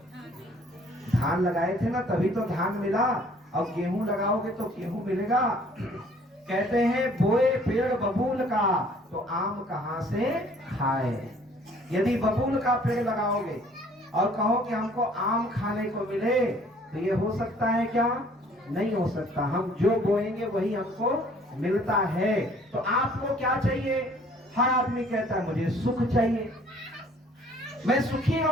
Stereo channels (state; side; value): normal; both; correlation 0.57